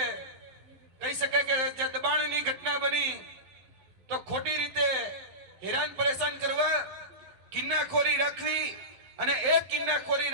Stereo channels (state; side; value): late; left; 11 ms